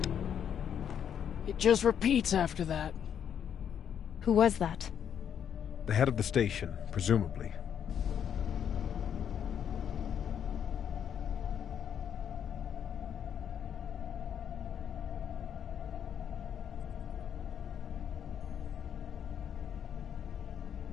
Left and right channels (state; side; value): quieter; right; 8.6 dB